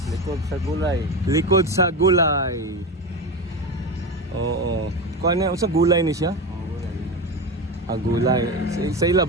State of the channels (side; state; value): both; normal; correlation 0.21